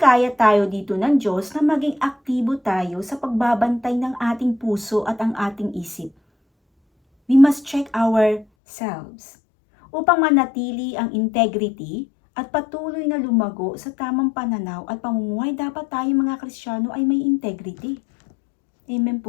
tayo dito ng Diyos na maging aktibo tayo sa pagbabantay ng ating puso at ang ating isip. We must check ourselves. Upang manatili ang integrity at patuloy na lumago sa tamang pananaw at pamumuhay, dapat tayo mga Kristiyano ay may integrity. Amen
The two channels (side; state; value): right; drops out; at 8.5 s